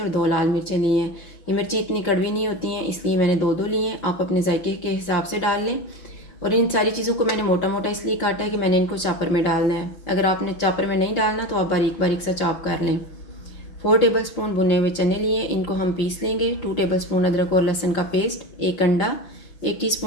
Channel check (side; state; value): right; late; 5.7 ms